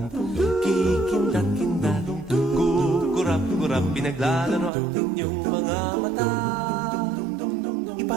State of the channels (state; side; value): drops out; left; at 4.7 s